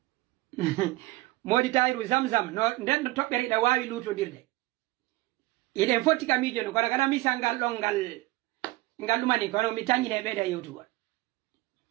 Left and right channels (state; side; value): quieter; left; 19.9 dB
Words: modi tayru zamzam no den tobbere da wawi lutodirde iden foti kamijo no kana mi sangal don ngal lumani kono mi tanyine be da youtube